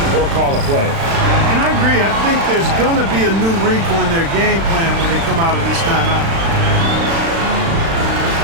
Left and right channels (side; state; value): left; late; 36 ms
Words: or call a play. And I agree. I think there's going to be a new wrinkle in their game plan when they come out of this timeout.